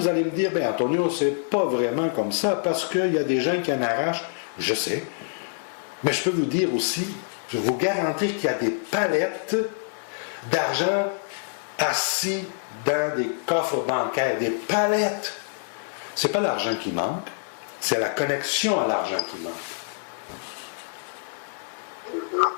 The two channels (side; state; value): right; silent; 61 dB below the other